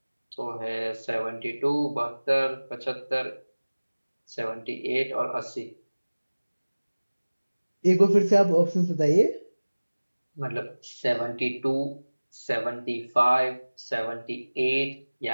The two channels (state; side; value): inverted; both; correlation -1.00